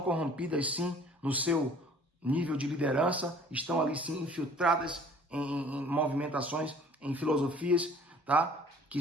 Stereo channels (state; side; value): normal; both; correlation 0.52